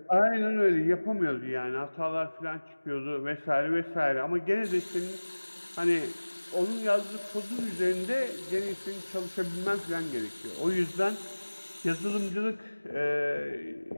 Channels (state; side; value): inverted; both; correlation -1.00